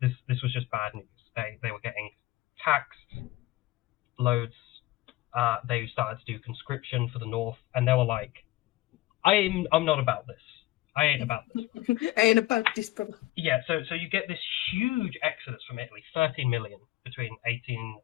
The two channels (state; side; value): quieter; right; 17.4 dB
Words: was just bad news. They were getting taxed loads. They started to do conscription for the North, and they were like, I'm not about this. I ain't about this. I ain't about this, brother. Yeah, so you get this huge exodus from Italy, 13 million between 1870